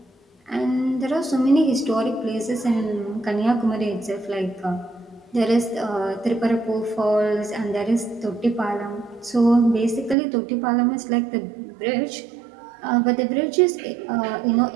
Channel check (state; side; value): drops out; left; at 10.2 s